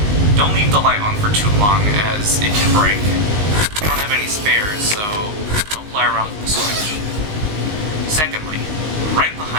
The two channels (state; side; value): late; left; 19 ms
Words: Don't leave the light on for too long, as it can break. We don't have any spares, so don't play around with the switch. Secondly, right